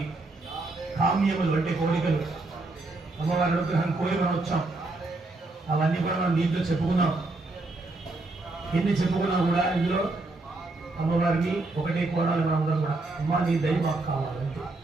కామ్యములు అంటే కోరికలు అమ్మవారి అనుగ్రహం కోరి మనం వచ్చాం. అవన్నీ కూడా మనం దీంట్లో చెప్పుకున్నాం. ఎన్ని చెప్పుకున్నా కూడా ఇందులో అమ్మవారిని ఒకటే కోరాలి మనం అందరం కూడా. అమ్మ నీ దయ మాకు కావాలంటే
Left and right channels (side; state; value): left; quieter; 3.1 dB